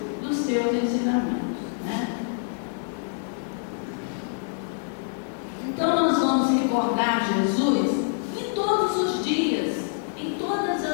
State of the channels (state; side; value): silent; right; digital silence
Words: dos seus ensinamentos, né? Então nós vamos recordar Jesus em todos os dias, em todas